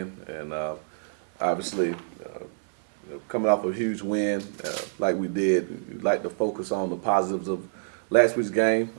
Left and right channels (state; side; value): silent; left; 60 dB below the other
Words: and obviously coming off a huge win like we did, we'd like to focus on the positives of last week's game,